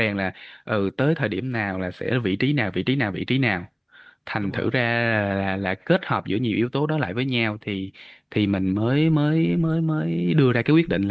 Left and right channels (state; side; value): identical; both; correlation 1.00